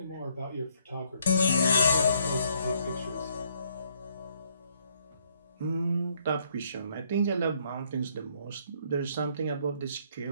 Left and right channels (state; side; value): inverted; both; correlation -0.69